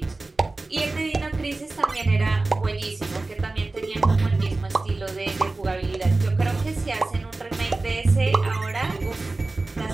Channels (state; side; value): quieter; left; 3.2 dB